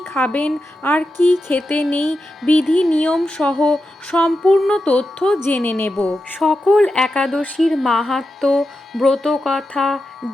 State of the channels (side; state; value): both; normal; correlation 0.89